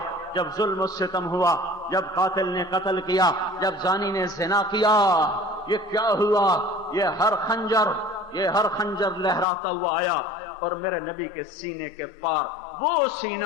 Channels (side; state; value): right; drops out; at 9.5 s